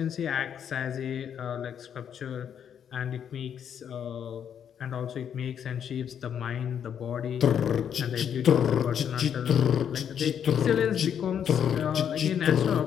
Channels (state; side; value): quieter; right; 8.5 dB